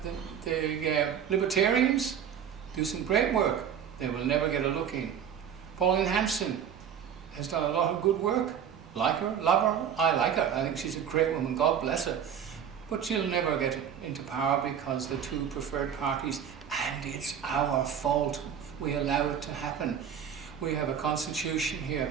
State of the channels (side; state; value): left; quieter; 8.3 dB